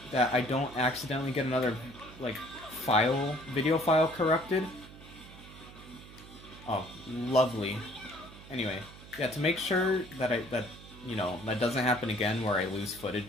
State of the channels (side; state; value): right; noise; hum, 18 dB below the sound